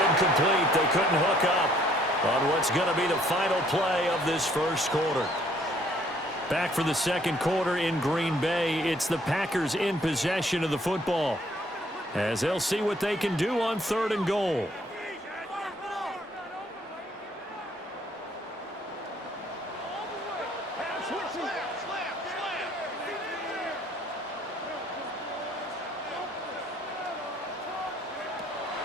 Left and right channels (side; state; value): both; normal; correlation 0.63